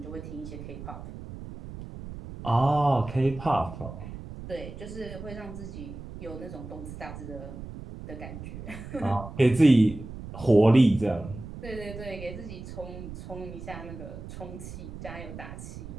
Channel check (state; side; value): noise; right; rumble, 11 dB below the sound